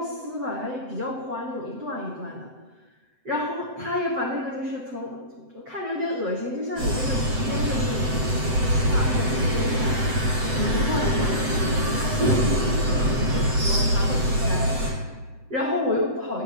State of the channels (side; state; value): left; late; 7.8 ms